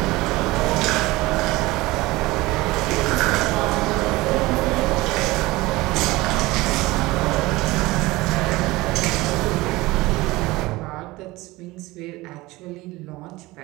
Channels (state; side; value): quieter; left; 20.3 dB